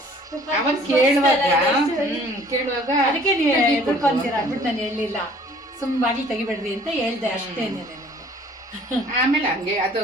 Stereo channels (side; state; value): both; normal; correlation 0.54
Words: ಅವನ್ ಕೇಳುವಾಗ ಅದಕ್ಕೆ ನೀವು ಎದ್ಕೊಂತೀರ ಅಂದ್ಬಿಟ್ಟು ನಾನು ಹೇಳಿಲ್ಲ, ಸುಮ್ ಬಾಗಿಲು ತೆಗಿಬೇಡ್ರಿ ಅಂತ ಹೇಳ್ದೆ ಅಷ್ಟೇ. ಆಮೇಲೆ ಹಂಗೆ ಅದು